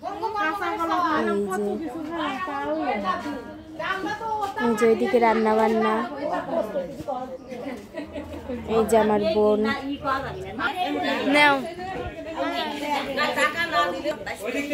এই যে ওইদিকে রান্না বান্না। এই যে আমার বোন নাও।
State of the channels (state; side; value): identical; both; correlation 1.00